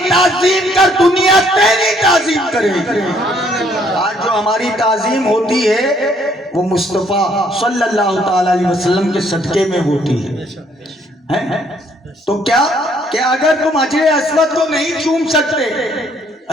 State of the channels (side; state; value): both; normal; correlation 0.66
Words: تعظیم کر، دنیا تیری تعظیم کرے۔ آج جو ہماری تعظیم ہوتی ہے وہ مصطفیٰ صلی اللہ تعالی علیہ وسلم کے صدقے میں ہوتی ہے۔ تو کیا کہ اگر تم حجر اسود کو نہیں چوم سکتے،